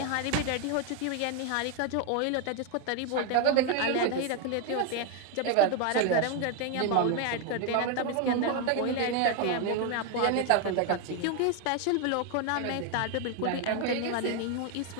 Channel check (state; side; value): different; both; correlation 0.01